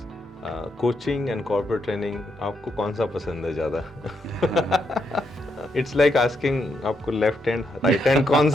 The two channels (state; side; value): normal; both; correlation 0.79